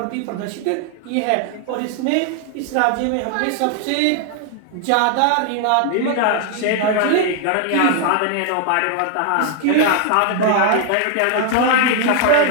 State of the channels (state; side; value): different; both; correlation 0.00